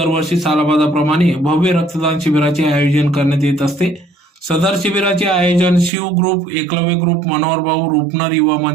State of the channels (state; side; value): drops out; left; at 5.9 s